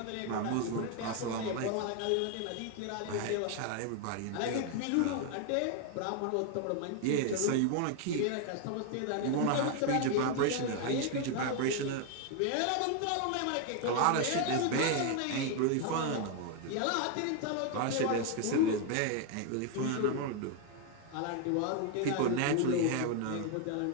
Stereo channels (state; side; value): different; both; correlation 0.01